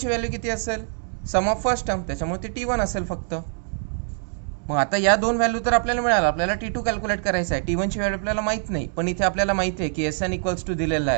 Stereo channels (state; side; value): silent; left; 62 dB below the other